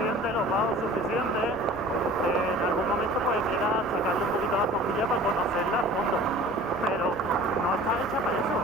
los bajos suficientes, en algún momento pues quiera sacarle un poquito la cojilla para conocerla a fondo. Pero no está hecha para eso,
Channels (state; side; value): normal; both; correlation 0.44